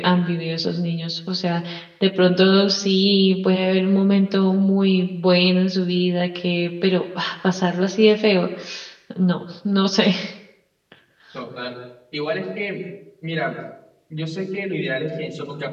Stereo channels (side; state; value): both; identical; correlation 1.00